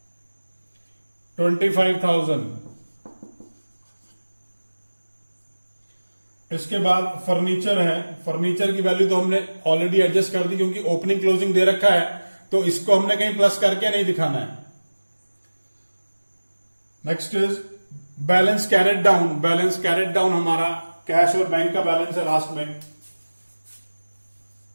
25,000। इसके बाद फर्नीचर है। फर्नीचर की वैल्यू तो हमने ऑलरेडी एडजस्ट कर दी, क्योंकि ओपनिंग क्लोजिंग दे रखा है, तो इसको हमने कहीं प्लस करके नहीं दिखाना है। Next is balance carried down. Balance carried down हमारा कैश और बैंक का बैलेंस है लास्ट में।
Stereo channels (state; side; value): inverted; both; correlation -1.00